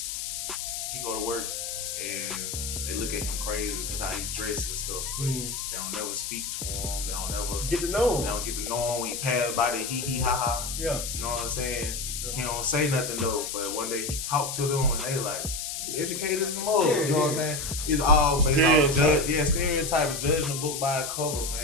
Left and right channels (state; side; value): noise; left; hiss, 4 dB below the sound